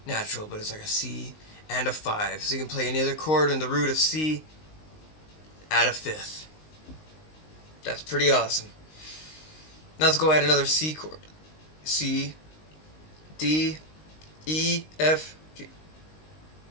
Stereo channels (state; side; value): late; right; 19 ms